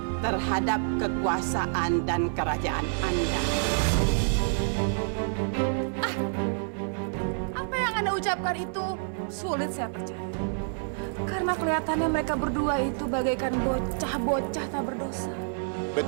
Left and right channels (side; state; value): left; silent; 59 dB below the other